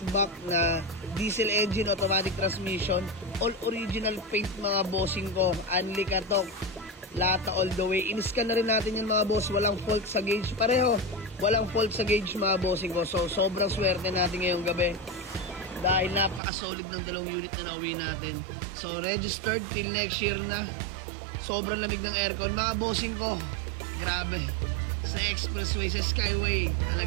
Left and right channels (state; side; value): drops out; left; at 16.4 s